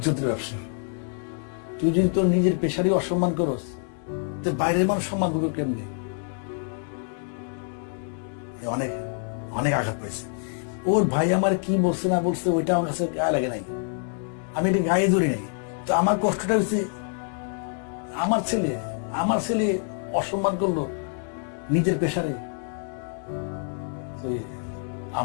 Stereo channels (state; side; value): silent; right; 58 dB below the other